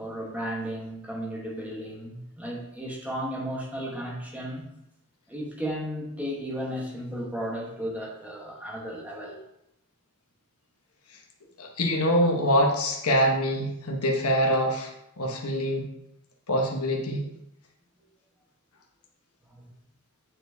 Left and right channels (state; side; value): normal; both; correlation -0.05